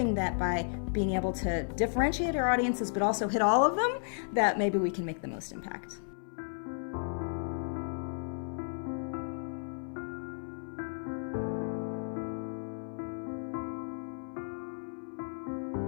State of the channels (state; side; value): silent; right; 55 dB below the other